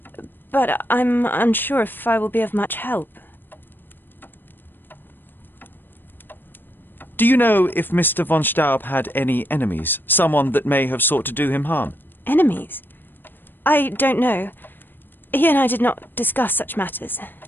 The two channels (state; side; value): late; right; 0.094 ms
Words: But I'm unsure if I will be of much help. Do you know if Mr. von Staub had any enemies? Someone that may have sought to do him harm? Enemies? I don't know. He and I did not discuss such matters,